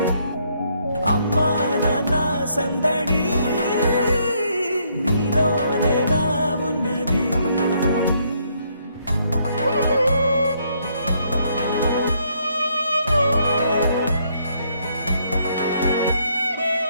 అమ్మా నాన్న సందడి నీలోనేగా ఉన్నది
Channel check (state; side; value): inverted; both; correlation -0.71